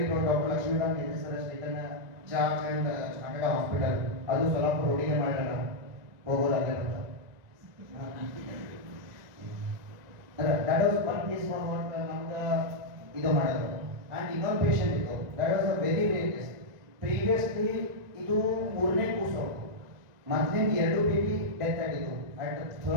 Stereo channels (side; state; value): left; late; 1.9 ms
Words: proud. Doctor Lakshmikant S sir taken charge and started a hospital. ಅದು ಸೊಲ್ಲಾಪುರ ರೋಡಿಗೆ ಮಾಡೋಣ ಹೋಗೋದಾಗಲ್ಲ. That was one case for what ನಮ್ಗೆ ಇದು ಮಾಡೋದು. And ಇನ್ನೊಂದು patient ಇತ್ತು, that was a very rare case. Previously ಇದು 3ನೇ ಕೂಸು, ಮೊದಲಿಂದ 2 ಬೇಬಿ ಡೆತ್ ಆಗಿತ್ತು at